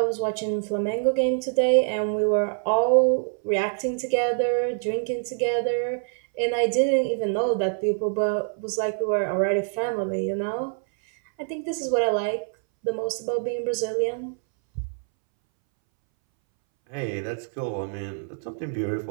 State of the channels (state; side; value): silent; left; 62 dB below the other